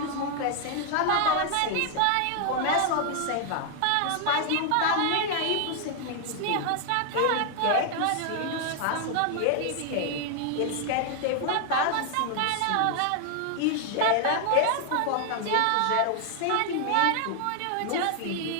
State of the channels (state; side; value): different; both; correlation 0.00